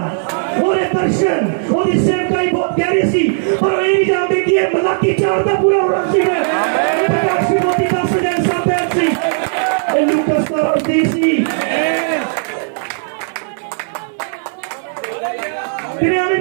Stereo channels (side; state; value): left; silent; 61 dB below the other